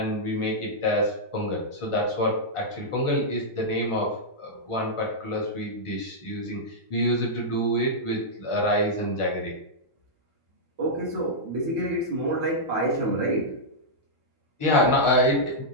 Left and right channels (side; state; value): right; late; 1.4 ms